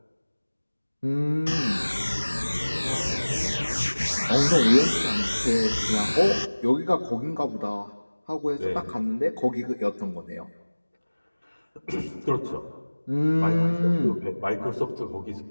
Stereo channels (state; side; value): inverted; both; correlation -1.00